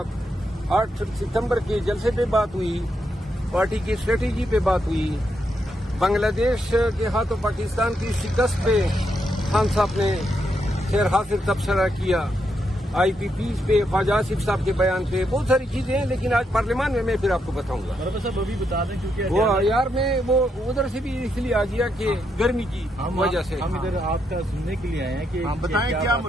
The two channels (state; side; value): normal; both; correlation 0.80